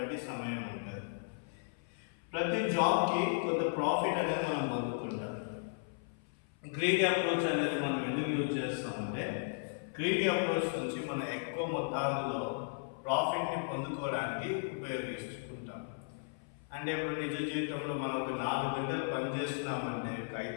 సమయం ఉంటుంది. ప్రతి జాబ్కి కొంత ప్రాఫిట్ అనేది మనం పొందుకుంటాం. గ్రీడీ అప్రోచ్ అనేది మనం ఎందుకు యూజ్ చేస్తామంటే, గ్రీడీ అప్రోచ్ నుంచి మనం ఎక్కువ మొత్తాల్లో ప్రాఫిట్ని పొందుకోవడానికి ఉపయోగిస్తుంటాం. అంటే ఇప్పుడు నిజ జీవితంలో మనం ఒక 4 గంటలు పనిచేస్తున్నామంటే, 5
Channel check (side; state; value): right; silent; 54 dB below the other